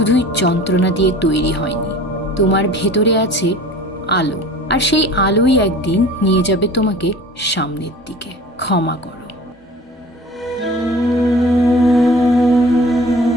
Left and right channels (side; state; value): both; normal; correlation 0.43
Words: যন্ত্রণা দিয়ে তৈরি হয়নি, তোমার ভেতরে আছে আলো, আর সেই আলোই একদিন নিয়ে যাবে তোমাকে সামনের দিকে। ক্ষমা করো।